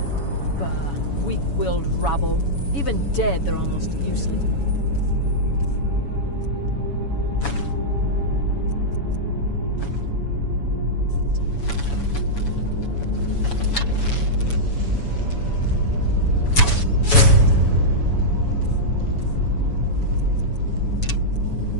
Bah, weak-willed rabble. Even dead, they're almost useless.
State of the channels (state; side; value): late; right; 7.1 ms